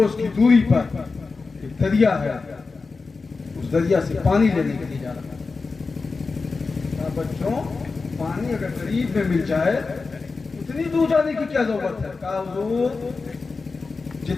کی دوری پر ایک دریا ہے, اس دریا سے پانی لینے کے لیے جا رہا ہوں. کہا بچوں پانی اگر قریب میں مل جائے اتنی دور جانے کی کیا ضرورت ہے؟ کہا حضور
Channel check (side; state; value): right; quieter; 4.2 dB